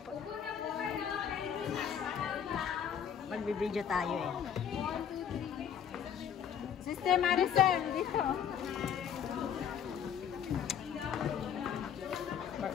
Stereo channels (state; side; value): quieter; right; 8.4 dB